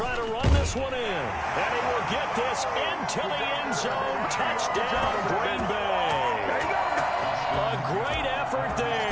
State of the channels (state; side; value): identical; both; correlation 1.00